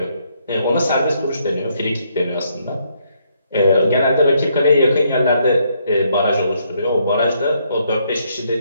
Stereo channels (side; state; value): both; inverted; correlation -0.73